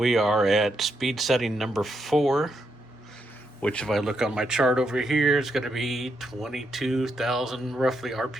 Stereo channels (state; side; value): normal; both; correlation 0.80